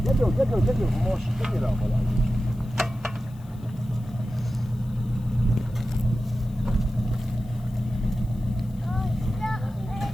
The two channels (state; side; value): noise; left; hiss, 29 dB below the sound